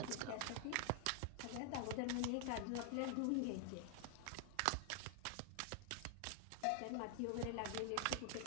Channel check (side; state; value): both; different; correlation 0.00